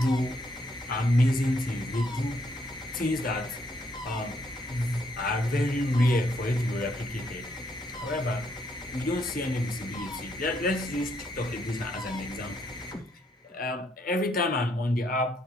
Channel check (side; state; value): both; normal; correlation 0.73